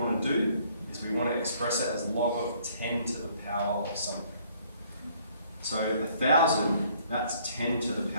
to do is we want to express it as log of 10 to the power of something. So 1,000, that's 10 to the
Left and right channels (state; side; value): inverted; both; correlation -0.61